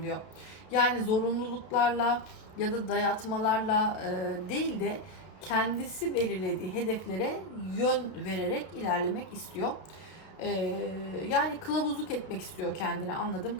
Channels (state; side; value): late; right; 32 ms